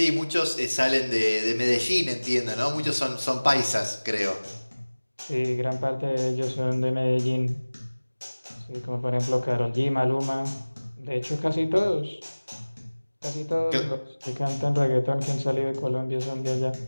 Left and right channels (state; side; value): inverted; both; correlation -1.00